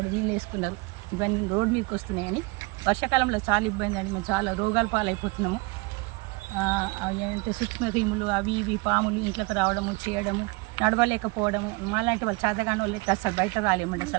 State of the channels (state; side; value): quieter; left; 26.2 dB